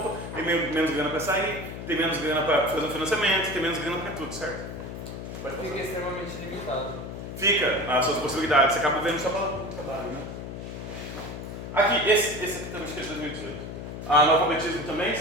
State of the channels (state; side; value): noise; left; hum, 8 dB below the sound